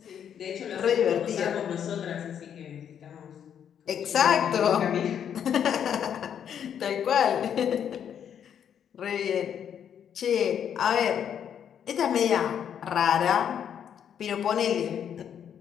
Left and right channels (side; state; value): right; quieter; 8.7 dB